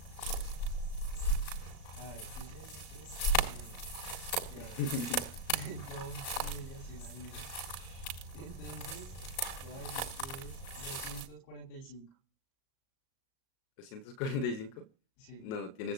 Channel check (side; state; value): right; late; 37 ms